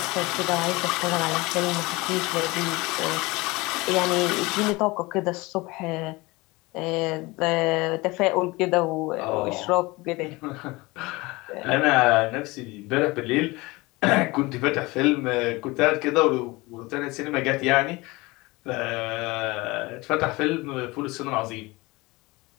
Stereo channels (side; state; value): right; quieter; 22.9 dB